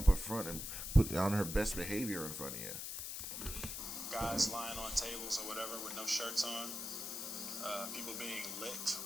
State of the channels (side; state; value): left; noise; hiss, 5 dB below the sound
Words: a front and putting on her best behavior in front of you. Guys lying on tables or whatever with no shirts on. People being licked.